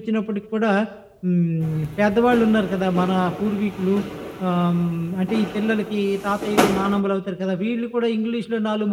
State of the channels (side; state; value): both; identical; correlation 1.00